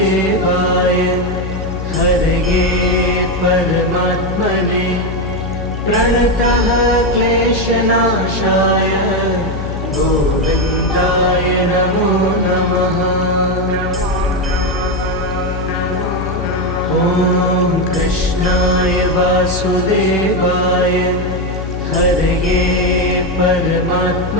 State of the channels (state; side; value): noise; left; hum, 6 dB below the sound